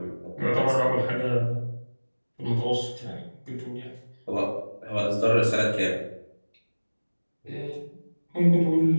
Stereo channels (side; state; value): both; inverted; correlation -1.00